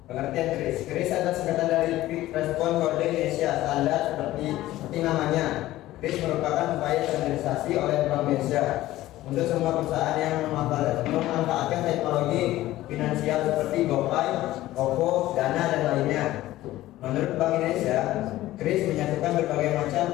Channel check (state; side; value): quieter; right; 15.7 dB